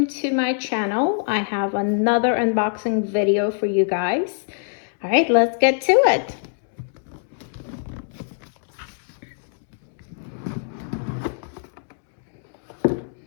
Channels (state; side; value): silent; right; digital silence